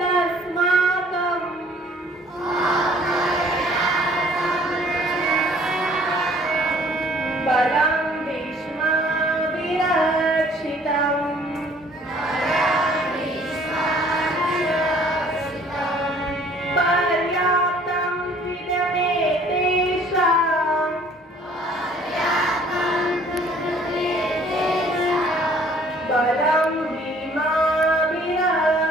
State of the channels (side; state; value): both; normal; correlation 0.56